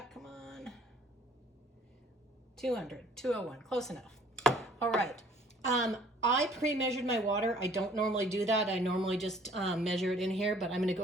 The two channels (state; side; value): normal; both; correlation 0.56